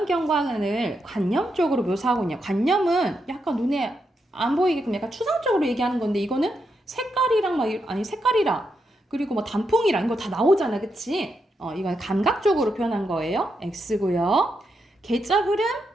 관념적으로 묘사하고 있냐. 관념은 약간 눈에 안 보이게끔 약간 추상적으로 얘기하는 건데 이거는 색깔이랑 색깔이랑 그리고 뭐 단풍이랑 이거 다 나오잖아. 그치? 이건 감각적으로 표현한 거예요. X고요. 계절 흐름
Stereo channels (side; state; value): both; normal; correlation 0.83